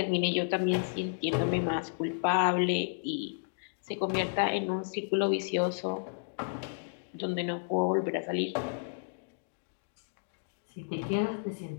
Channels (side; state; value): right; silent; digital silence